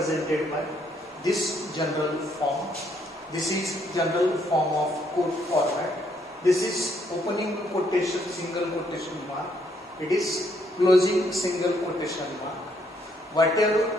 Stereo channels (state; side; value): normal; both; correlation 0.71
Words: by this general form. This is general form of code format. This is opening quotation, single quotation mark. It is closing single quotation mark.